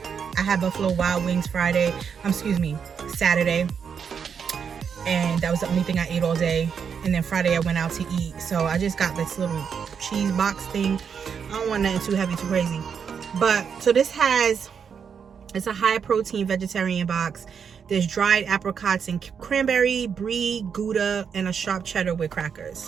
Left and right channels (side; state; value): left; quieter; 6.9 dB